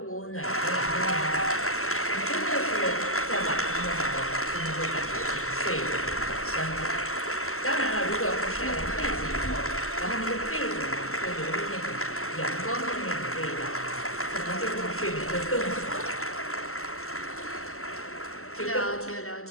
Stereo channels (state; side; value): late; right; 0.63 ms